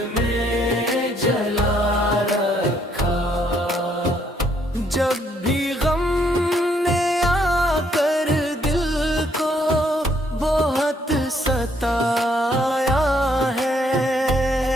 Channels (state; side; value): normal; both; correlation 0.69